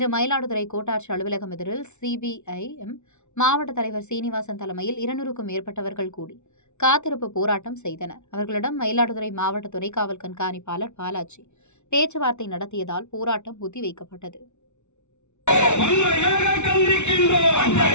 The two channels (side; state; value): right; late; 0.82 ms